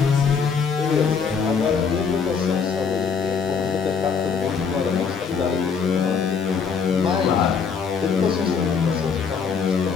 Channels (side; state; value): right; quieter; 6.0 dB